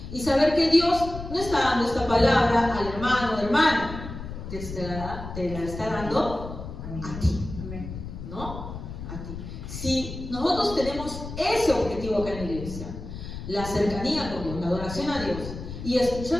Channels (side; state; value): left; noise; rumble, 9 dB below the sound